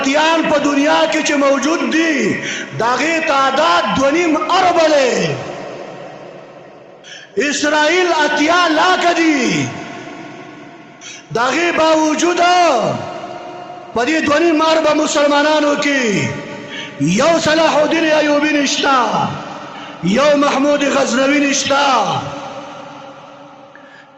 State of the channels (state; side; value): identical; both; correlation 1.00